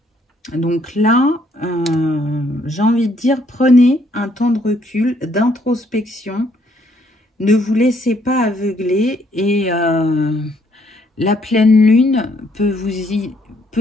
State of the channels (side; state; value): both; normal; correlation 0.68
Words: Donc là, j'ai envie de dire, prenez un temps de recul, d'introspection. Ne vous laissez pas aveugler et la pleine lune peut